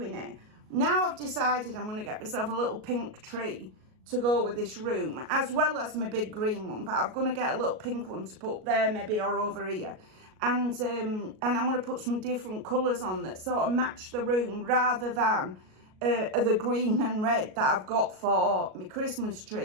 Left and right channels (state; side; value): late; left; 37 ms